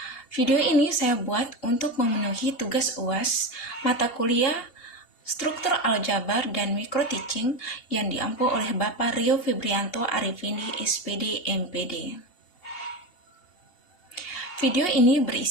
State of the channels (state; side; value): late; right; 2.8 ms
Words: Video ini saya buat untuk memenuhi tugas UAS mata kuliah Struktur Aljabar dan Mikro Teaching yang diampu oleh Bapak Rio Febrianto Arifindi, SPD, MPD. Video ini